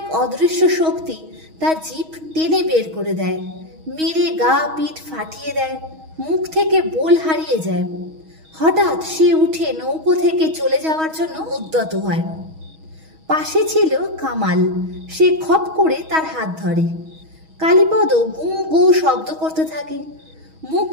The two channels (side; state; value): left; late; 6.3 ms